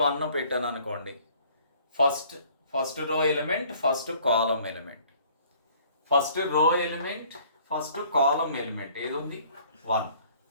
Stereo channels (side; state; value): both; inverted; correlation -0.57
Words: పెట్టాను అనుకోండి. ఫస్ట్ రో ఎలిమెంట్, ఫస్ట్ కాలం element. First row element, first కాలం ఎలిమెంట్ ఏది ఉంది? 1.